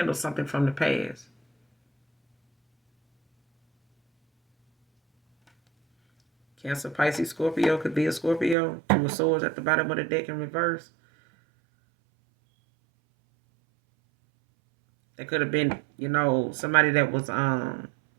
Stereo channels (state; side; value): drops out; left; at 8.6 s